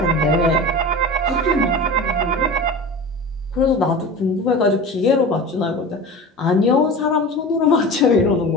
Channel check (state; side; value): normal; both; correlation 0.32